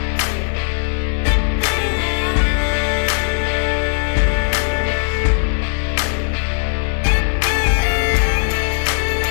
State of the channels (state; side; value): silent; right; digital silence